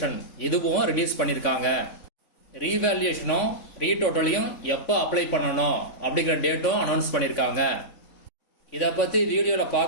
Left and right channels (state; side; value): late; right; 3.5 ms